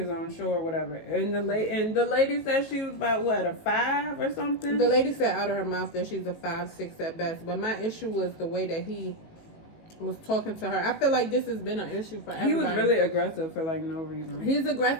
own show or whatever. And the lady said she was about what, a 5 or something? The lady said out of her mouth that she's a 5'6" at best. But my issue was the way that he was talking to her. I feel like this has been an issue for everybody. He was really aggressive for like no reason. He's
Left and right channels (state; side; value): late; right; 18 ms